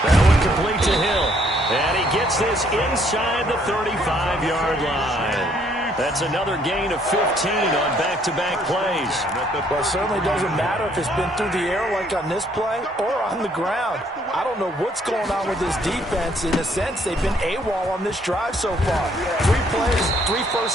That one complete to Hill. And he gets this inside the 35-yard line. That's another gain of 15 on back-to-back plays. Well, it certainly doesn't matter if it's been through the air like on this play or on the ground. I don't know what's going on with this defense. In a sense, they've been AWOL on this drive so far. 3 plays, 3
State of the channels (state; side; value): normal; both; correlation 0.66